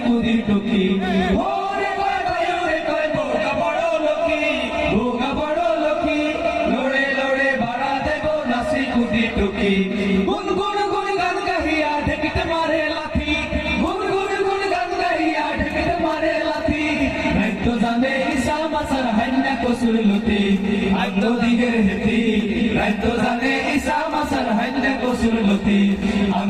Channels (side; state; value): both; identical; correlation 1.00